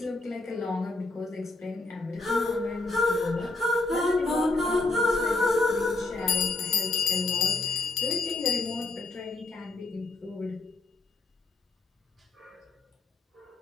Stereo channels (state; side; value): quieter; right; 3.3 dB